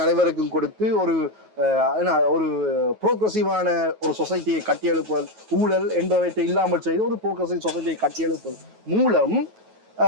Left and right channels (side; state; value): left; late; 9.3 ms